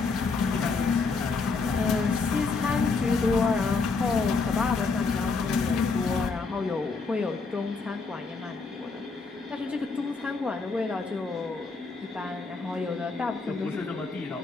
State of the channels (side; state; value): right; quieter; 4.3 dB